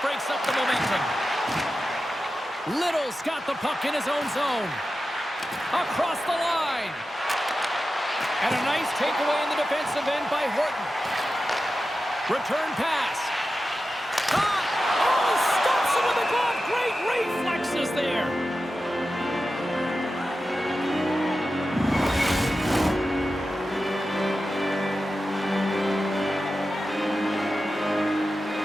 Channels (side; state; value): both; normal; correlation 0.92